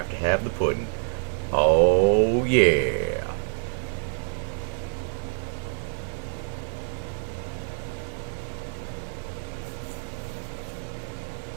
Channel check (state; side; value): silent; left; digital silence